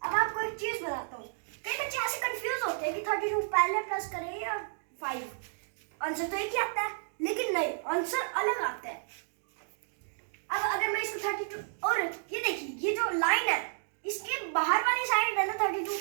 अब आपको एक चीज बताता हूँ। कई बच्चे ऐसे कंफ्यूज होते हैं कि 32 पहले प्लस करें या 5। आंसर तो एक ही आता है, लेकिन नहीं, आंसर अलग आता है। अब अगर मैं इसको 32, और ये देखिए, ये जो लाइन है इसके बाहर वाली साइड है ना 32,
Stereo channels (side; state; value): left; silent; digital silence